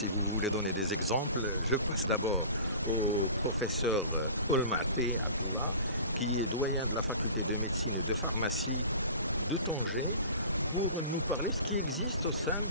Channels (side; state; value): both; inverted; correlation -0.41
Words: vous voulez donner des exemples, je passe d'abord au professeur Olmati Abdallah, qui est doyen de la faculté de médecine et de pharmacie de Tanger, pour nous parler de ce qui existe au sein